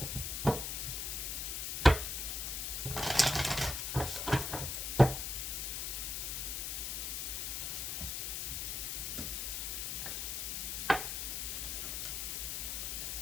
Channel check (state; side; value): noise; left; hiss, 2 dB below the sound